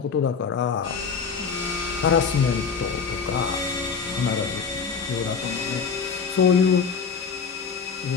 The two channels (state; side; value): quieter; right; 5.9 dB